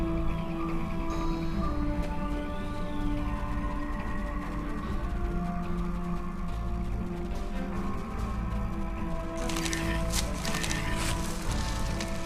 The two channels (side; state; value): both; identical; correlation 1.00